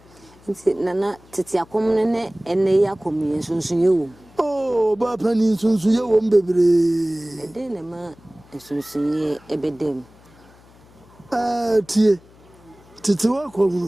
nti nana tete akom ne ene ya komi sunsun ye wo oh ba pani sunsun ye wo mbebre ede ne ma sunsun ye ebedem tie tete wa kom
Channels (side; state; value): left; noise; hum, 26 dB below the sound